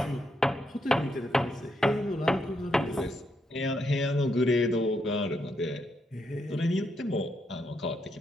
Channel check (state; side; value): normal; both; correlation 0.79